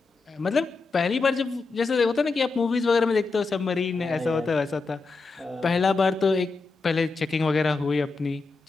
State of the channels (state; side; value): quieter; right; 4.0 dB